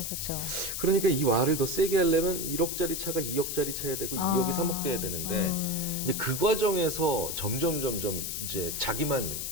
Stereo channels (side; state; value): left; noise; hiss, 4 dB below the sound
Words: 그렇죠. 그러니까 이 와를 더 세게 하려면 1억짜리 차가 2억짜리 차야 되고 2억이 3억 돼야 되는데 이제 그 과정에서 점점 이제 자기만